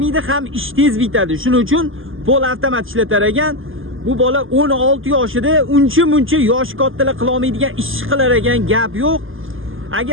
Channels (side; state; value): left; late; 0.59 ms